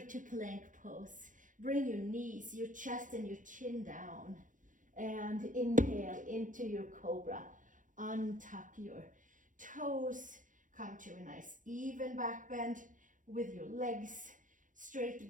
plank pose. Bring your knees, your chest and your chin down, and inhale into your cobra. Untuck your toes, come to a nice even back bend with your legs straight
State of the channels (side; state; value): left; late; 0.38 ms